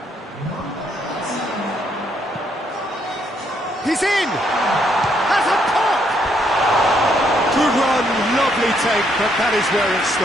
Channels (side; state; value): both; normal; correlation 0.72